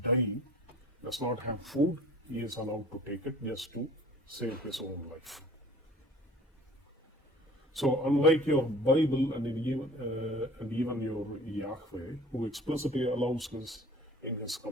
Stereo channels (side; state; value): both; normal; correlation 0.47